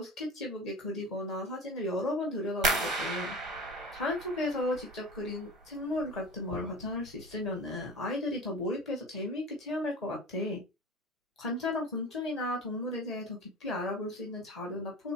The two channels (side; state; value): both; normal; correlation 0.34